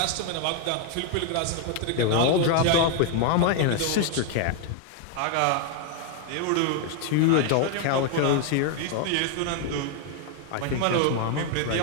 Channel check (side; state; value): both; different; correlation 0.00